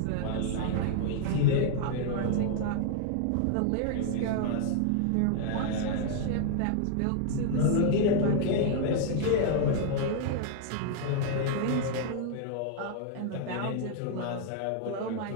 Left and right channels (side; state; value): both; different; correlation 0.00